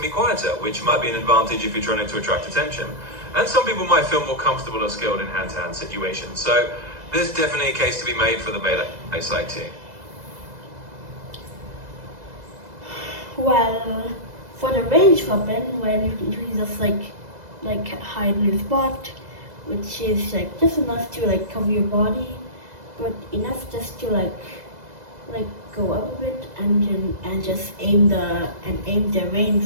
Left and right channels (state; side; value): late; left; 2.0 ms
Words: be quieter, which might be an advantage if you're trying to attract attention. And some people might feel more comfortable or skilled in hand-to-hand situations. So there's definitely a case to be made for the melee side too. Well, for the ranged weapon, when you can just hide in a spot, which is just enough to cover your body, but enough just to go up a bit and just aim the